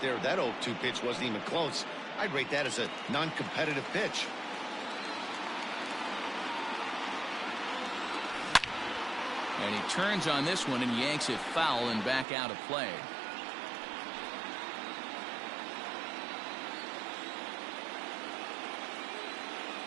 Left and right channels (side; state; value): left; drops out; at 12.2 s